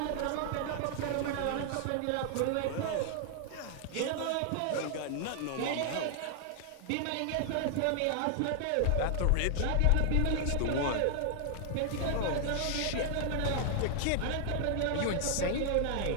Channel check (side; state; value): both; different; correlation 0.00